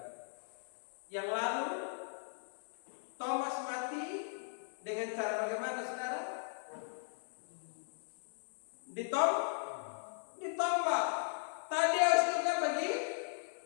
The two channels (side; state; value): right; silent; digital silence